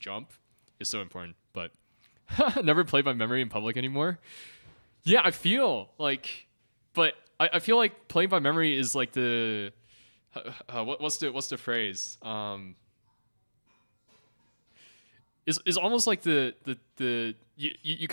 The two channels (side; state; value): both; inverted; correlation -1.00